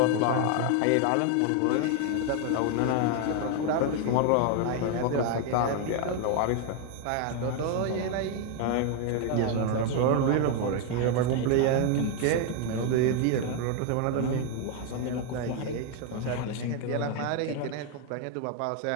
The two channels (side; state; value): both; different; correlation 0.01